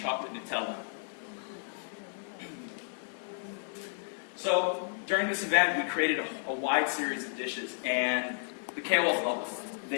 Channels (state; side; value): silent; right; digital silence